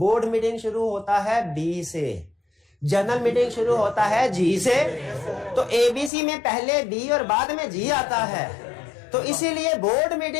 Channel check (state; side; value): drops out; right; at 6.1 s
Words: मीटिंग शुरू होता है बी से, जनरल मीटिंग शुरू होता है जी से, तो एबीसी में पहले बी और बाद में जी आता है। तो इसीलिए बोर्ड